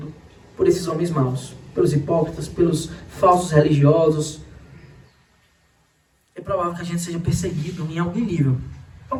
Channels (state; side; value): identical; both; correlation 1.00